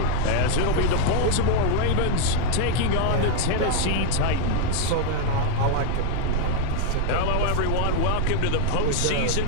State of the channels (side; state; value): both; different; correlation 0.00